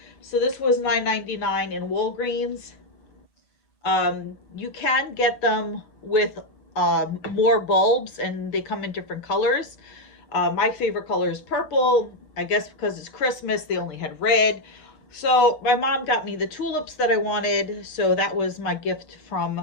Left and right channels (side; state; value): right; late; 7.2 ms